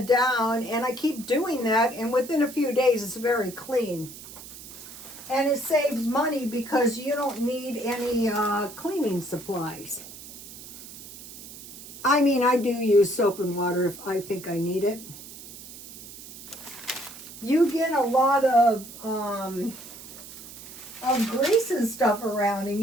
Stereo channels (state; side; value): noise; right; hiss, 15 dB below the sound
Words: down, and I keep doing that. And within a few days, it's very clean. And it saves money because you don't need any cleaning supplies. I mean, I do use soap and water if I think I need it. You get a lot of grease and stuff around, and